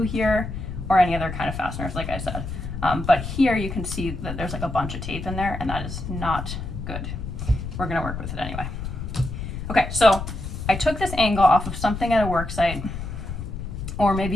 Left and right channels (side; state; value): left; noise; rumble, 6 dB below the sound